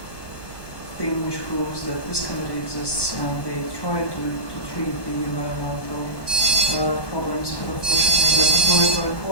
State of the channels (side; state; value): right; late; 1.1 ms